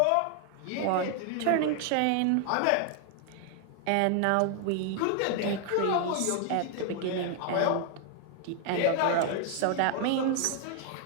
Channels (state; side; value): different; both; correlation 0.00